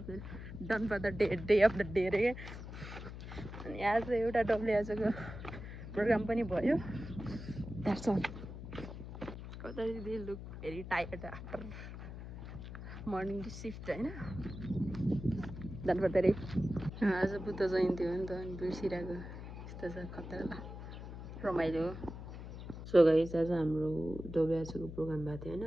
the done for the day of the day रे अनि आज एउटा डब्लुएचओको प्रोग्राम पनि भयो द्याट्स अल कता they look very tired after morning shift होइन डन फर द डे आज बुद्ध जयन्ती हो नि त अनि बिर्सिरहेको यस्तो छ खतरा रमाइलो सो गाइस आज हाम्रो डब्लुएचओको प्रोग्राम भएको थियो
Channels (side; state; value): left; noise; hum, 10 dB below the sound